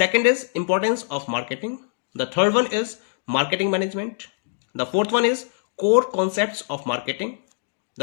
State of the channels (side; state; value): right; silent; digital silence